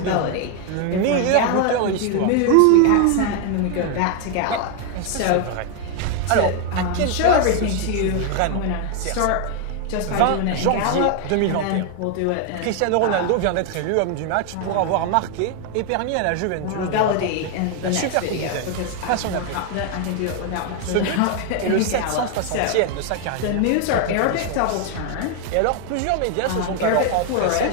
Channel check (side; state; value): both; different; correlation 0.01